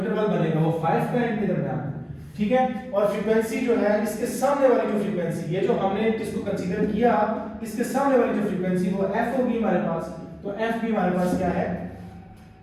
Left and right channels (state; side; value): identical; both; correlation 1.00